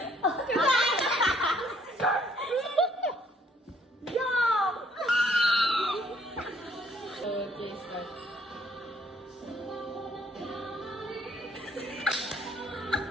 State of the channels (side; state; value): both; normal; correlation 0.65